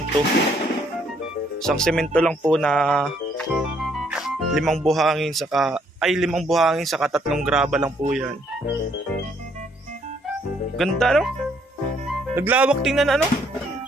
lang po na 5 buhangin saka 3 graba lang po yan. Ganda, no? Naglawak, tingnan,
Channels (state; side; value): normal; both; correlation 0.68